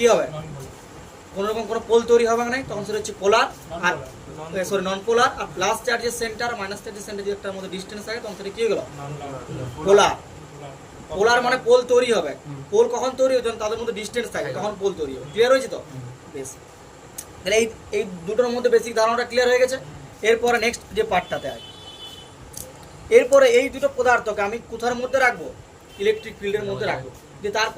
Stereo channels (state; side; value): identical; both; correlation 1.00